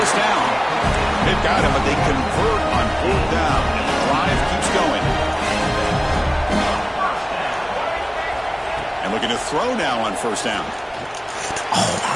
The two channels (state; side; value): identical; both; correlation 1.00